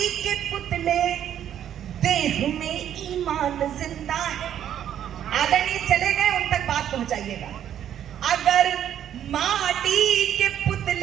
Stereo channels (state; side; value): quieter; left; 10.2 dB